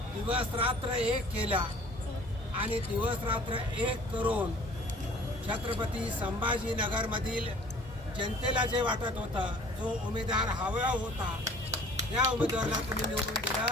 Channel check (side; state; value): both; normal; correlation 0.50